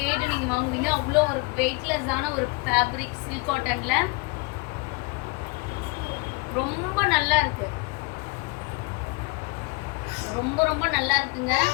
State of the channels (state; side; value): quieter; right; 28.4 dB